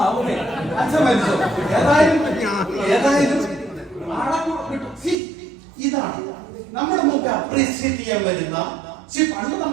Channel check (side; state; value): left; drops out; at 5.2 s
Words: അച്ഛൻ മരിച്ചോ? ഏതായാലും ഇതാണ് നമ്മുടെ മുമ്പ് അപ്രീഷിയേറ്റ് ചെയ്യാൻ വരുന്ന. പണ്ട്